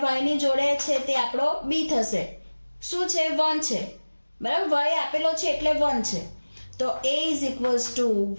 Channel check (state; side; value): inverted; both; correlation -1.00